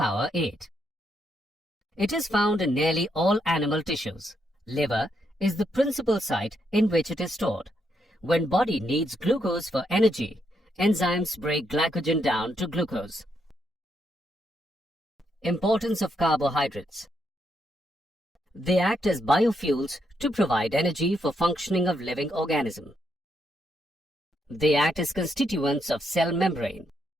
8. It is found in nearly all animal tissues. Liver is the principal site in which it is stored. When body needs glucose for energy, enzymes break glycogen down to glucose. Importance of carbohydrates. They act as biofuels to provide energy for functioning of living organism. They act as constituents of cell membrane.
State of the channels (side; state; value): both; normal; correlation 0.78